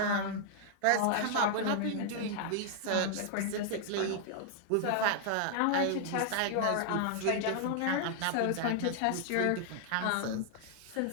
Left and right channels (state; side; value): different; both; correlation -0.01